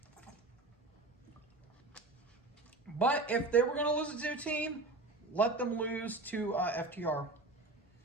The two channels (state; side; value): quieter; left; 3.1 dB